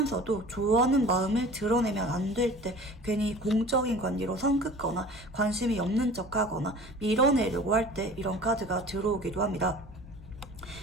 좋아하는 마음을 드러내면 안 될 때 괜히 공적인 관계로 선 긋거나 관심이 없는 척하거나 밀어내려고 할 때 이런 카드가 들어오기도 합니다.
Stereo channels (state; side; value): normal; both; correlation 0.42